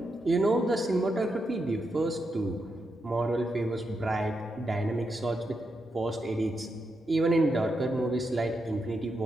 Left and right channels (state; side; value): normal; both; correlation 0.84